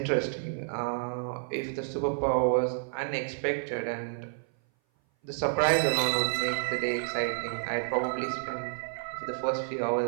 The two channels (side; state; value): left; silent; 56 dB below the other